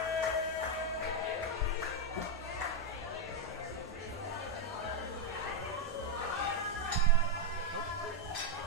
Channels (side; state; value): both; normal; correlation 0.01